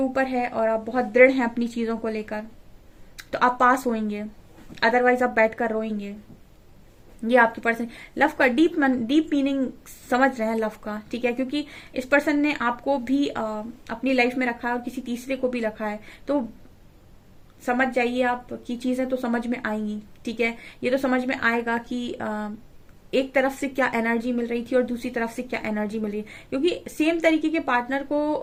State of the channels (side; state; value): both; identical; correlation 1.00